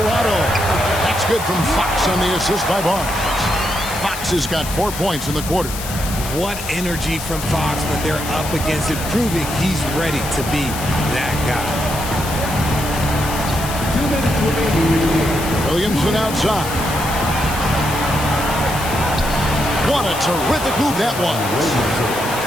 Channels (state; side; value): noise; left; hiss, 9 dB below the sound